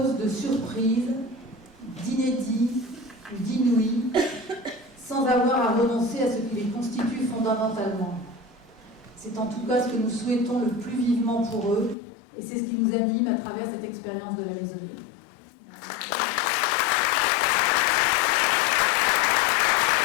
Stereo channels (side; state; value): right; drops out; at 12.0 s